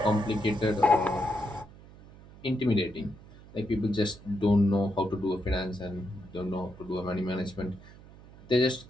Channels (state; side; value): noise; right; hum, 21 dB below the sound